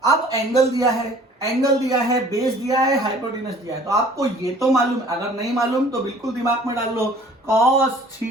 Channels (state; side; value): normal; both; correlation 0.52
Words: अब एंगल दिया है, एंगल दिया है, बेस दिया है, हाइपोटेनस दिया है। तो आपको ये तो मालूम है, अगर नहीं मालूम तो बिल्कुल दिमाग में डाल लो, cos